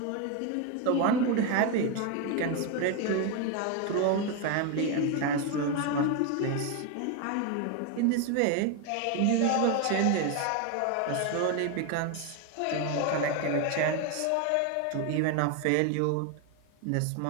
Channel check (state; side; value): different; both; correlation 0.02